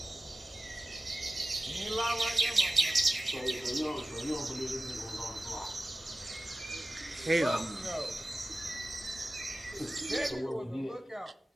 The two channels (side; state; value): both; normal; correlation 0.96